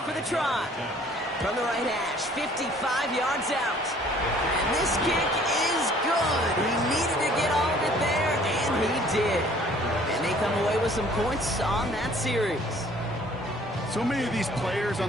for the try. From the right hash, 55 yards out. And this kick is good. He needed to get all of it there, and he did. And they come away with some points on that series. So many of these players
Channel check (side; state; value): both; normal; correlation 0.55